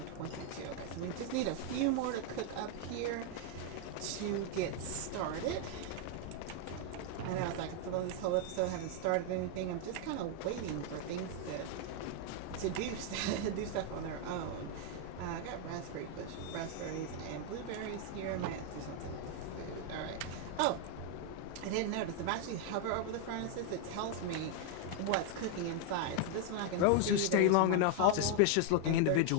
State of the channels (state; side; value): different; both; correlation 0.00